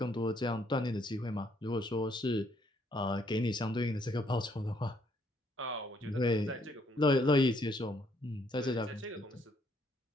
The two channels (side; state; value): both; normal; correlation 0.69